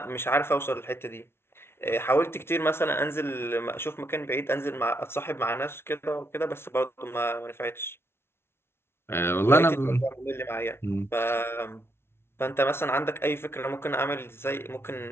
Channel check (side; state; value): right; late; 0.12 ms